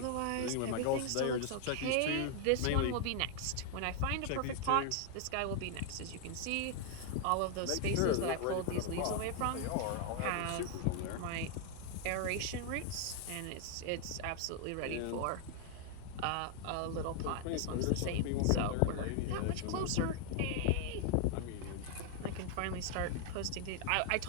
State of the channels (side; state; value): both; different; correlation 0.00